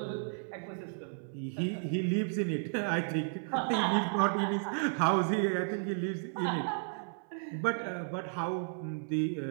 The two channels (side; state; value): left; silent; 56 dB below the other